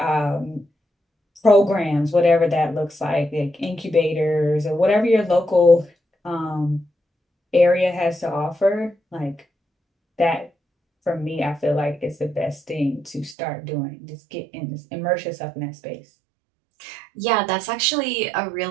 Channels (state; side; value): drops out; left; at 13.4 s